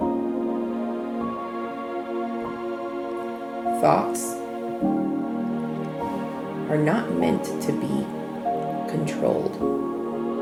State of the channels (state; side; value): identical; both; correlation 1.00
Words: Thoughts are not meant to be controlled.